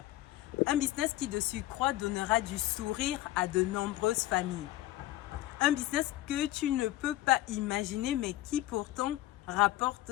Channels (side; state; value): right; quieter; 15.7 dB